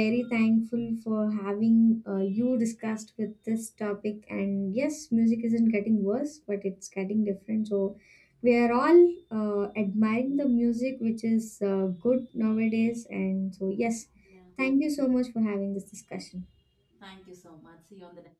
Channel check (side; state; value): both; identical; correlation 1.00